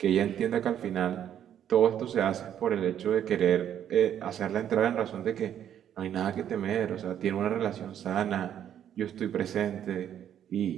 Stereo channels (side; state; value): left; quieter; 9.9 dB